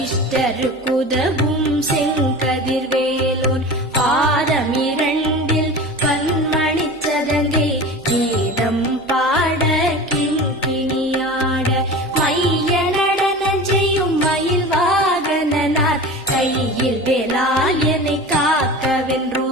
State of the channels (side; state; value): both; normal; correlation 0.34